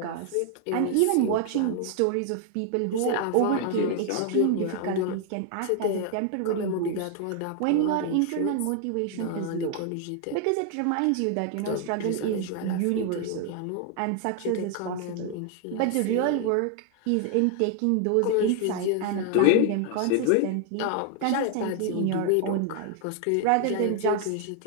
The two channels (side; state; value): both; different; correlation 0.00